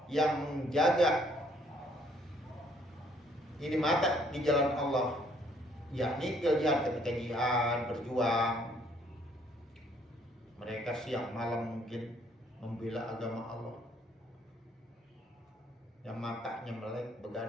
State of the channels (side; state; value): both; normal; correlation 0.64